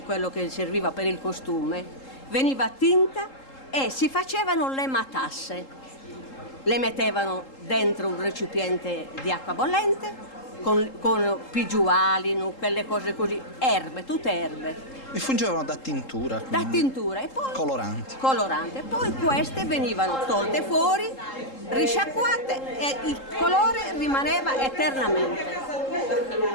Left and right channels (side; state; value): right; late; 3.8 ms